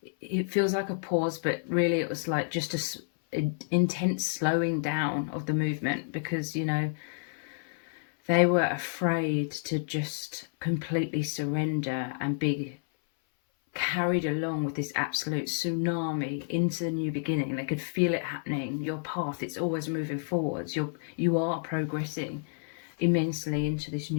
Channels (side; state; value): right; silent; 58 dB below the other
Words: it feels like a pause, but really it was like just an intense slowing down of the movement, because, you know, they were afraid to just completely surrender and be carried along with this absolute tsunami into the new beginning. They could feel it happening. Your path, it's always moving forwards. You are progressing immensely into this